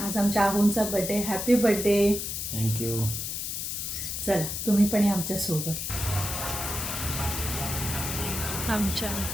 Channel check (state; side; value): noise; left; hiss, 4 dB below the sound